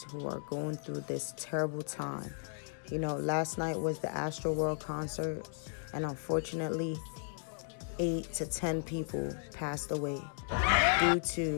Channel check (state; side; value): silent; right; digital silence